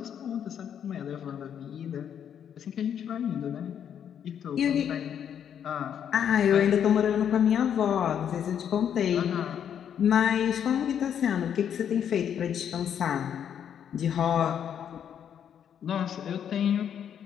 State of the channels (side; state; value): right; quieter; 8.8 dB